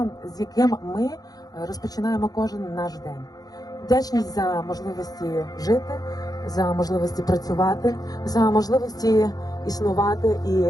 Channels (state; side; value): late; right; 0.18 ms